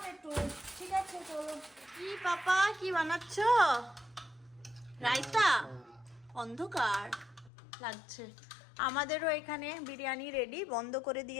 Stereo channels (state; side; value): drops out; right; at 7.5 s